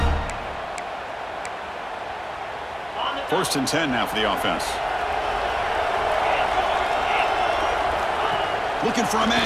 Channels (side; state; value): both; identical; correlation 1.00